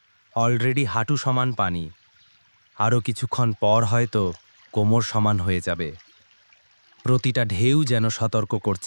অলরেডি হাঁটু সমান পানি। আরও কিছুক্ষণ পর হয়তো কোমর সমান হয়ে যাবে। প্রতিটা ঢেউ যেন সতর্ক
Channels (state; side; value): inverted; both; correlation -1.00